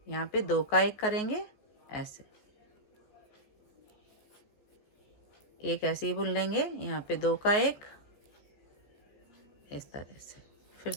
यहाँ पे 2 का 1 करेंगे ऐसे, एक ऐसे ही बुन लेंगे। यहाँ पे 2 का 1 इस तरह से, फिर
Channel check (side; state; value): right; late; 15 ms